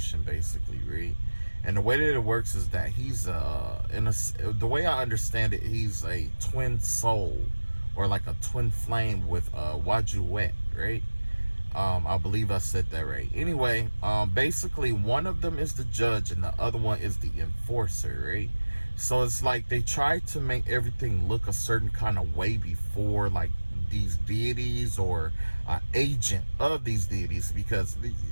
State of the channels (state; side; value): inverted; both; correlation -1.00